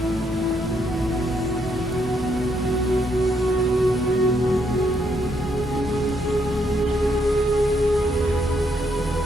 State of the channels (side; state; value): both; normal; correlation 0.74